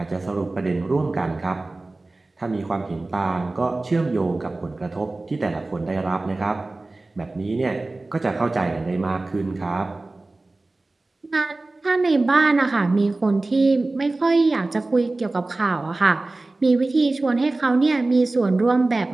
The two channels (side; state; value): left; quieter; 3.1 dB